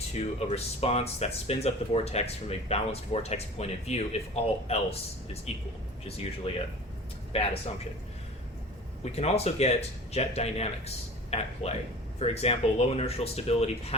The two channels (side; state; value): both; normal; correlation 0.40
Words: to a response that spins up the vortex from a balanced vortex point of view if all else is equal, which is usually a bad assumption. We can also get jet dynamics at play. For example, low inertial stability